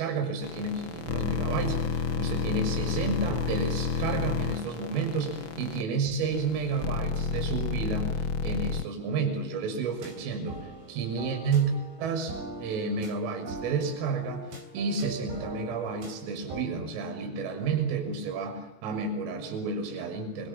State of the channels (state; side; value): late; left; 19 ms